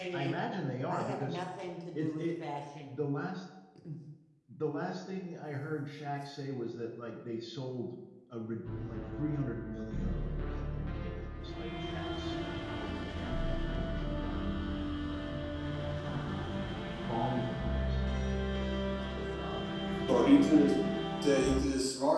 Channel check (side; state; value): both; identical; correlation 1.00